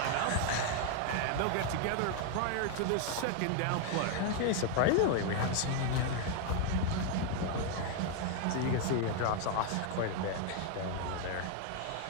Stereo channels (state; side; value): different; both; correlation 0.00